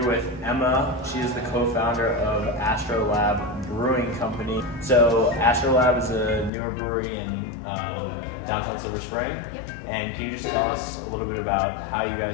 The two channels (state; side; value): drops out; right; at 6.5 s